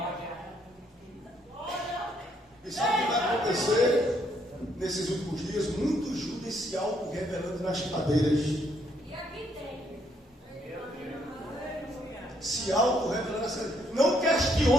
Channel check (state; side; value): normal; both; correlation 0.71